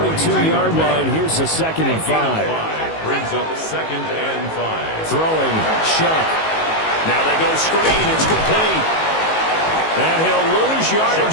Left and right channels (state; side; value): late; right; 19 ms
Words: line. Here's a 2nd and 5. Brings up 2nd and 5. Throwing, Shuck. Now they go screen. It's complete. And he'll lose